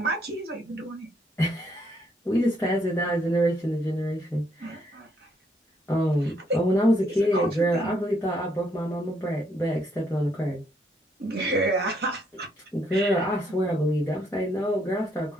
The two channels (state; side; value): normal; both; correlation 0.72